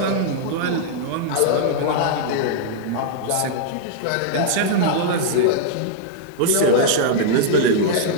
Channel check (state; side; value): different; both; correlation -0.01